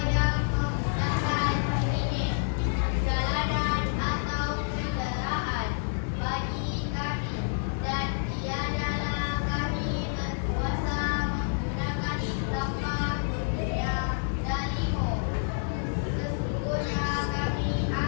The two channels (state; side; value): silent; right; digital silence